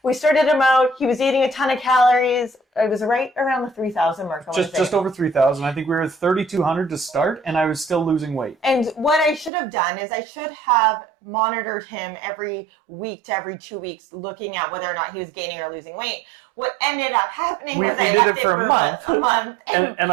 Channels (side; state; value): left; drops out; at 9.5 s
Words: we started him out. He was eating a ton of calories. It was right around the 3,000 mark. Just over 3,000. I think we were at 3,200 to start, and I was still losing weight. And what I should have done is I should have monitored him every week to every 2 weeks, looking at whether or not he was gaining or losing weight. What ended up happening was I left it for a month. And